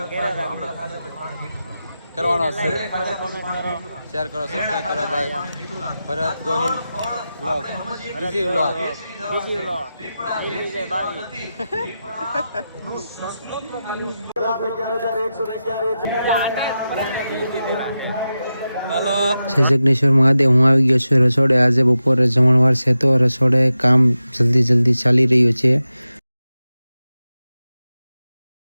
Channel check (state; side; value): inverted; both; correlation -0.91